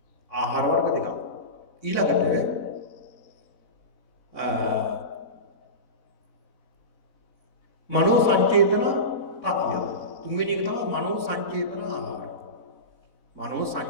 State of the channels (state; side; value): late; right; 4.0 ms